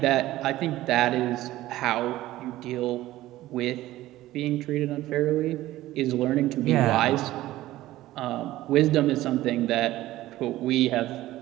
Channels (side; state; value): left; quieter; 15.8 dB